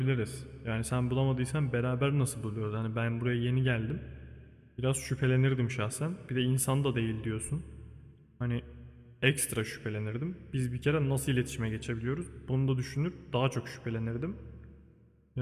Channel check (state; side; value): identical; both; correlation 1.00